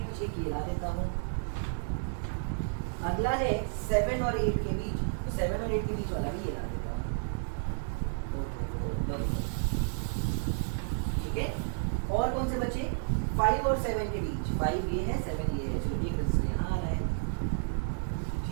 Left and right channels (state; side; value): silent; left; digital silence